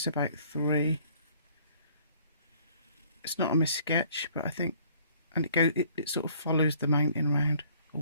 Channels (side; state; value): both; inverted; correlation -0.58